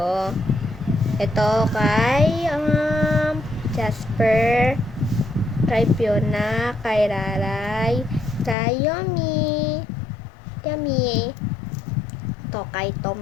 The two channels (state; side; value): drops out; right; at 8.6 s